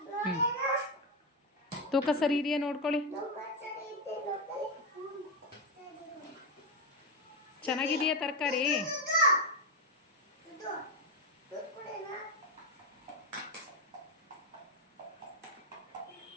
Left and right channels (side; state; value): both; normal; correlation 0.09